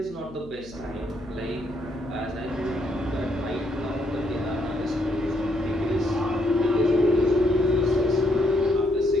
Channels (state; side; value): noise; left; hum, 19 dB below the sound